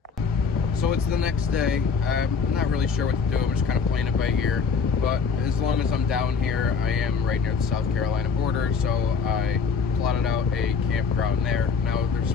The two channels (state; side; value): quieter; right; 5.5 dB